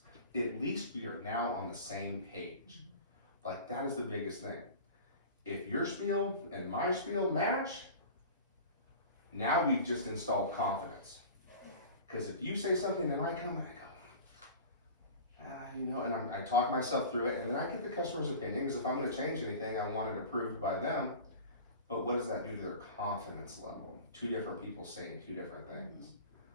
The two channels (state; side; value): inverted; both; correlation -0.37